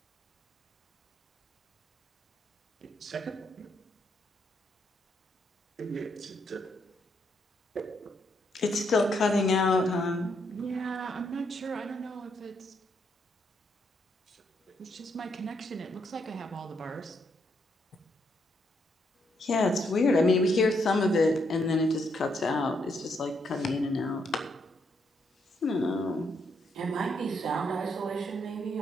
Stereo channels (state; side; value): normal; both; correlation 0.76